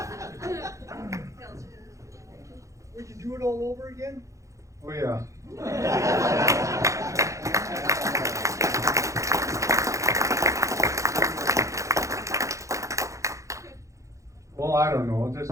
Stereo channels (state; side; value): late; left; 0.15 ms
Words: Would you do it all over again? Oh, yeah. Well, I don't know,